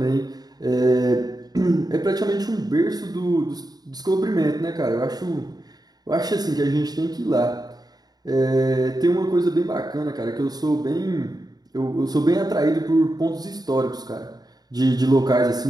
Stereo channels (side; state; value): left; late; 0.19 ms